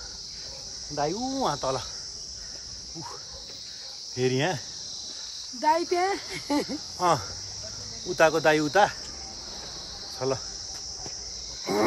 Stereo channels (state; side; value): identical; both; correlation 1.00